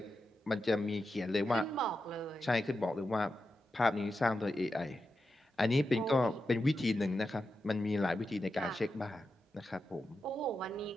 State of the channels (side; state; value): both; normal; correlation 0.89